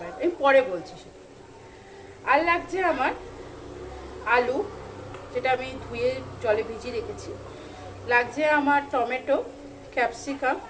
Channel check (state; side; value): identical; both; correlation 1.00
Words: আমি পরে বলছি সেটা। আর লাগছে আমার আলু, যেটা আমি ধুয়ে জলে ভিজিয়ে রেখেছি। লাগছে আমার টমেটো, ক্যাপসিকাম,